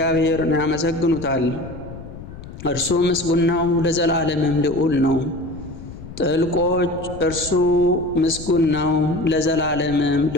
ያመሰግኑታል። እርሱ ምስጉን ነው፣ ለዘላለምም ልዑል ነው። ጥልቆች እርሱ ምስጉን ነው፣ ለዘላለምም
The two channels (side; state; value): left; noise; rumble, 14 dB below the sound